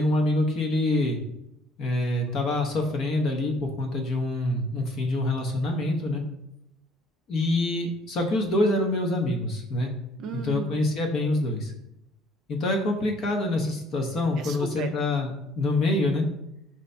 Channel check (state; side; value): normal; both; correlation 0.61